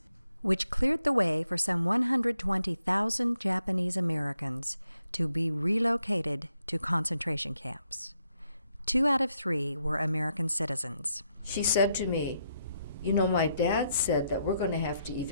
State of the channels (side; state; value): both; inverted; correlation -0.78